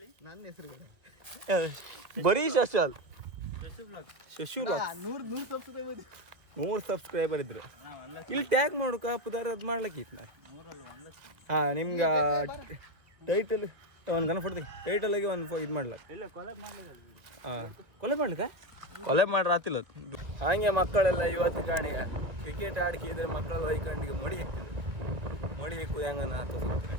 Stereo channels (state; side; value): late; left; 1.6 ms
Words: ನನ್ನ ಹೆಸರು ಬರೀ ಶಶಾಲ್ ಶಶು ವ್ಲಾಗ್ 100 ಸಬ್ಸ್ಕ್ರೈಬರ್ ಇದ್ರು ಇಲ್ಲಿ ಟ್ಯಾಗ್ ಮಾಡೋಕ ಪುದಾರ ಅದು ಮಾಡ್ಲಿಕ್ಕಿತ್ತು ನಾನು ಹಾಂ ನಿಮ್ಗೆ ಟೈಟಲ್ ಒಂದು ಗನ ಕೊಡ್ತೀನಿ ಟೈಟಲಾಗಿ ಒಂದು ಇದು ಮಾಡ್ಲಕ್ಕ ಹಾಂ ಕೊಲೆ ಮಾಡ್ರೆ ಆತಿಲ್ಲ ಹಾಗೆ ಮಕ್ಕಳೆಲ್ಲ ಇವತ್ತು ಕಾಣಿಗ ಕ್ರಿಕೆಟ್ ಆಡ್ಕಿದ್ರೆ ಮಕ್ಕಳೆಲ್ಲ ಹೊಯ್ಕಂಡಿಗೆ ಮಡಿ ಹೆಕ್ತಿದ್ರು ಮಡಿ ಹೆಕ್ಕುದು ಹೆಂಗನ ತೋರಿಸ್ತಾರೆ